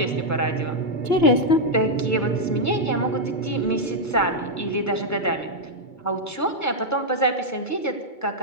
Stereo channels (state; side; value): late; right; 2.2 ms